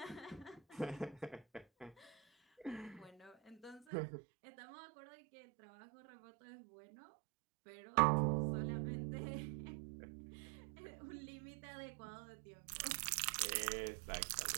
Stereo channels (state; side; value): drops out; left; at 3.9 s